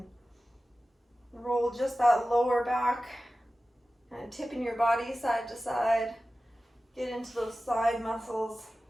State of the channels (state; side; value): normal; both; correlation 0.95